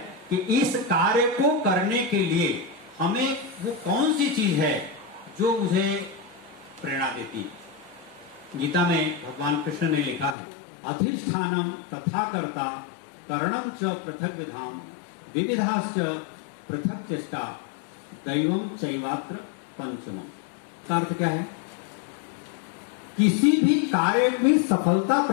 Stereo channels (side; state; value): right; drops out; at 10.4 s